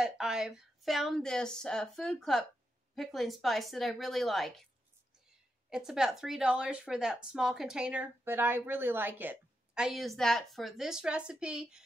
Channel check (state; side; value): normal; both; correlation 0.85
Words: I've found this Food Club pickling spice that I really like. It's about $3 for that small container, but I really like it. I use that for this recipe